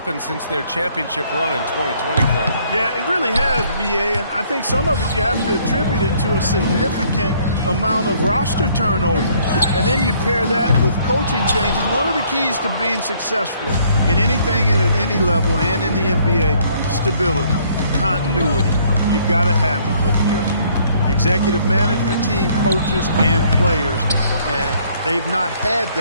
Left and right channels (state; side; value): inverted; both; correlation -0.63